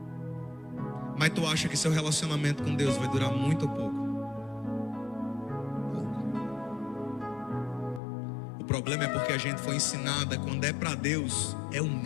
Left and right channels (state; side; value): drops out; right; at 8.0 s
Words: Mas tu acha que seu relacionamento com Deus vai durar muito ou pouco? O problema é porque a gente foi ensinada, quando é para Deus, é o